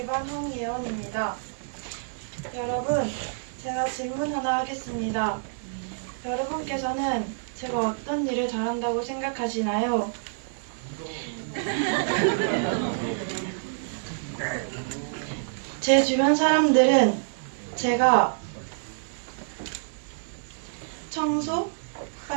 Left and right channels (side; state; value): left; silent; 56 dB below the other